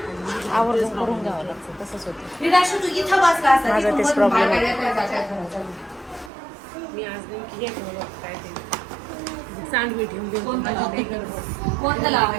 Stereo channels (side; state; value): left; drops out; at 6.3 s